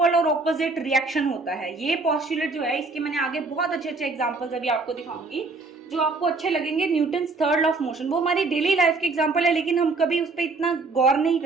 और ऑपोजिट रिएक्शन होता है। ये पोस्टुलेट जो है इसके मैंने आगे बहुत अच्छे अच्छे एग्जांपल्स अभी आपको दिखाऊंगी जो आपको अच्छे लगेंगे। Newton's third law of motion वो हमारी डेली लाइफ के एग्जांपल है, लेकिन हम कभी उस पर इतना गौर नहीं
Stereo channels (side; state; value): left; quieter; 3.8 dB